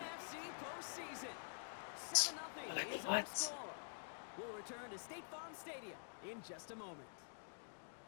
our What? score. We'll return to State Farm Stadium in just a moment.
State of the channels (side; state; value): right; silent; digital silence